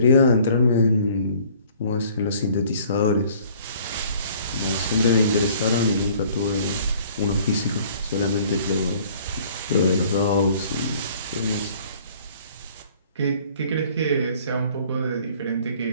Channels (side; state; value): both; inverted; correlation -0.55